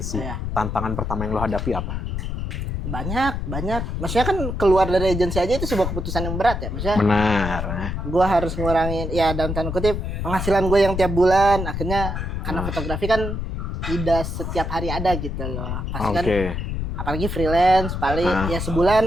Tantangan pertama yang lo hadapi apa? Banyak. Maksudnya kan keluar dari agensi aja itu sebuah keputusan yang berat ya. Maksudnya benar. Gue harus ngurangin ya dalam tanda kutip penghasilan gue yang tiap bulan. Akhirnya karena fotografi kan tidak setiap hari ada gitu loh. Pasti kan apalagi freelance paling ya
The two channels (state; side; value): noise; left; rumble, 3 dB below the sound